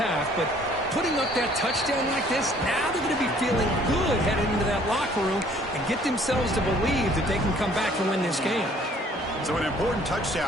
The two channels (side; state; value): both; normal; correlation 0.58